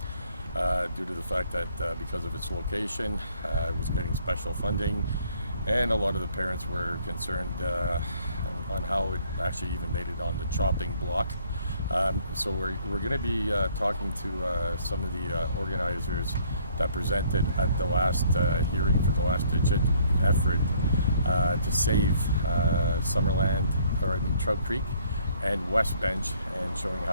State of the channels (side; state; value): both; inverted; correlation -0.62